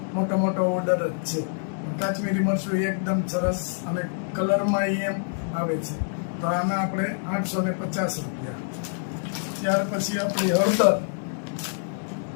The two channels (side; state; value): right; silent; digital silence